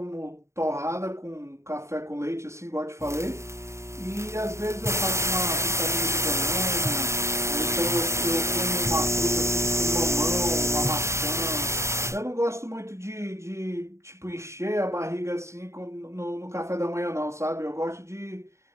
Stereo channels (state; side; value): late; left; 0.14 ms